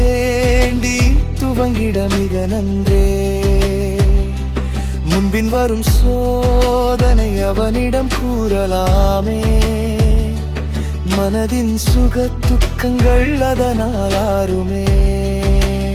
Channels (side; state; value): both; identical; correlation 1.00